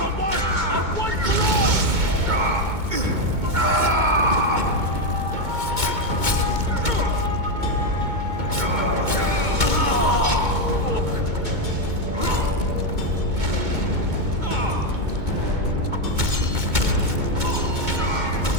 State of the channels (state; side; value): late; left; 2.2 ms